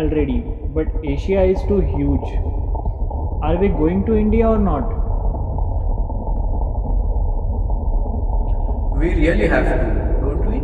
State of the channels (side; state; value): both; identical; correlation 1.00